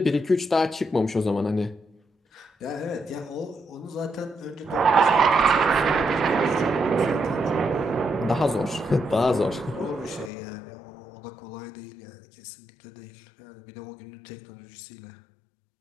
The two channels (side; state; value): right; drops out; at 10.3 s